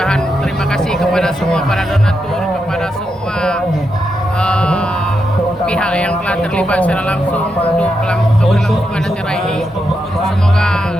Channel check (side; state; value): both; normal; correlation 0.84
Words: terima kasih kepada semua para donatur, kepada semua pihak yang telah terlibat secara langsung untuk keberlangsungan acara ini. Semoga